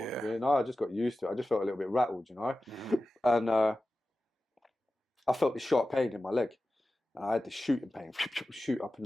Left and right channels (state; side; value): normal; both; correlation 0.95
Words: Yeah. You know, I just got used to it. I just felt a little bit rattled, you know? And I felt this sharp pain in my leg. And I had this shooting pain, shoot up and